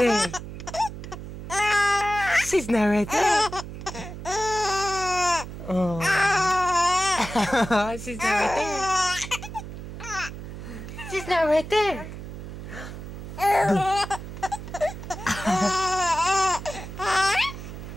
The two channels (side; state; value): right; noise; hum, 10 dB below the sound